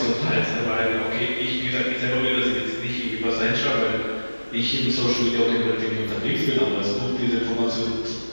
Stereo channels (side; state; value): both; inverted; correlation -1.00